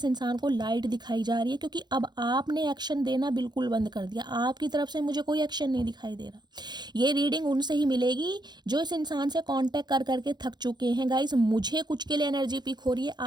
इंसान को लाइट दिखाई जा रही है, क्योंकि अब आपने एक्शन देना बिल्कुल बंद कर दिया। आपकी तरफ से मुझे कोई एक्शन नहीं दिखाई दे रहा। ये रीडिंग उनसे ही मिलेगी जो इस इंसान से कांटेक्ट कर करके थक चुके हैं। गाइस मुझे कुछ के लिए एनर्जी पिक हो रही है,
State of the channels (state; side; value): late; left; 0.21 ms